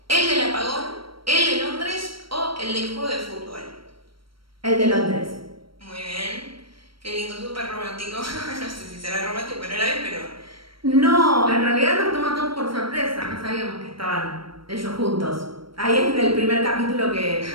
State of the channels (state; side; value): late; left; 0.74 ms